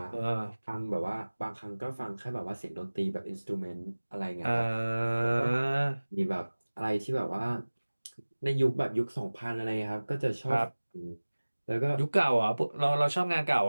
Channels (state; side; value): inverted; both; correlation -1.00